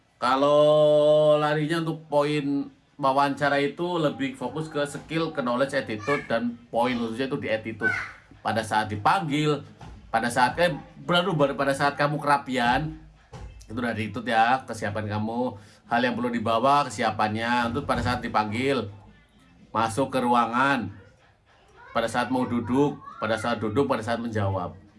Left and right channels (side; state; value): both; identical; correlation 1.00